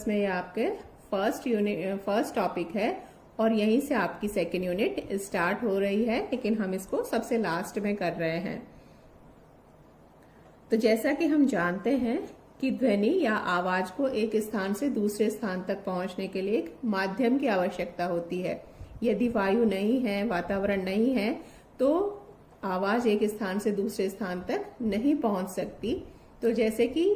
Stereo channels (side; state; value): both; identical; correlation 1.00